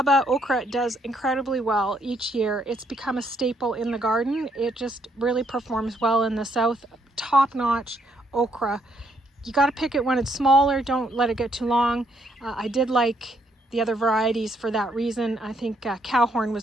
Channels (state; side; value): normal; both; correlation 0.72